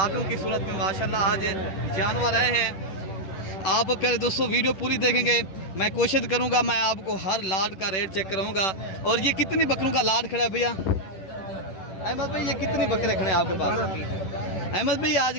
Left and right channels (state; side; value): late; right; 10 ms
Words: की सूरत में माशाल्लाह आज जानवर आए हैं। आप प्यारे दोस्तों वीडियो पूरी देखेंगे। मैं कोशिश करूंगा मैं आपको हर लाट का रेट चेक कराऊंगा। और ये कितनी बकरों का लाट खड़ा है भैया? अहमद भाई ये कितनी बकरे खड़े हैं आपके पास? अहमद भाई आज